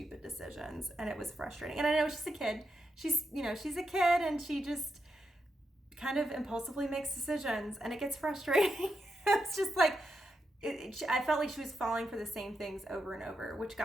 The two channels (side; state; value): both; normal; correlation 0.85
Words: decisions, and it was frustrating. And I know she's a kid. She's a kid, and she just kind of impulsively makes decisions, and it gets frustrating. It's just like, I felt like she was falling for the same things over and over, which